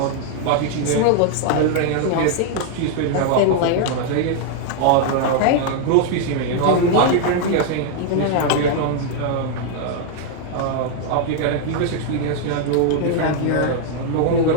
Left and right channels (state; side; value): different; both; correlation 0.00